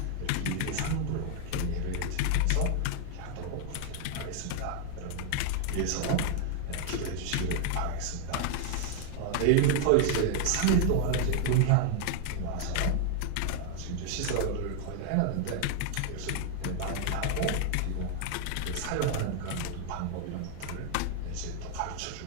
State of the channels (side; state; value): both; different; correlation 0.00